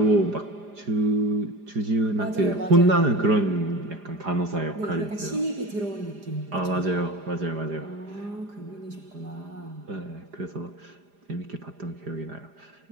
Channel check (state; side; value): late; left; 4.9 ms